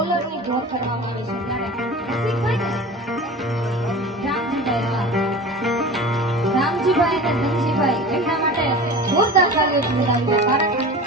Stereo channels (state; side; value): normal; both; correlation 0.35